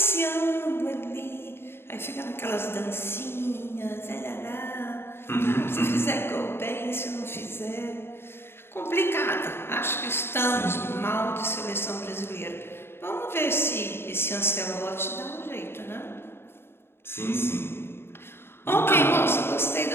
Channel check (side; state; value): right; late; 0.11 ms